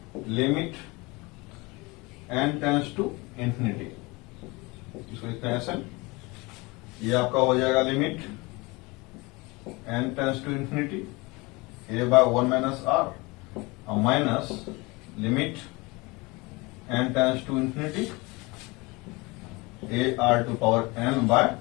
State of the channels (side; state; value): right; quieter; 24.8 dB